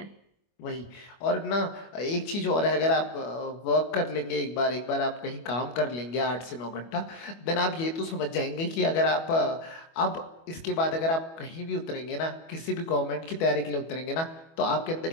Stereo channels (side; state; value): right; late; 25 ms